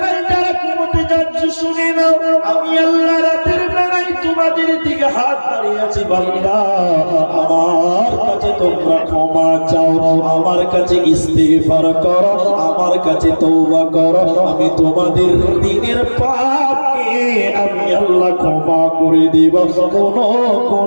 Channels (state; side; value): inverted; both; correlation -1.00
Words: যারা ঘুমোতে যাচ্ছ, শুনে নাও আমি আল্লাহ রাতের বেলায় তোমাদের দিকে হাত বাড়িয়েছি। বান্দা, আমার কাছে তোমরা ক্ষমা চাও, আমার কাছে ইস্তিগফার করো, আমার কাছে তওবা করো, আমি তোমাদের দিনের পাপকে আমি আল্লাহ ক্ষমা করে দিব, কোনো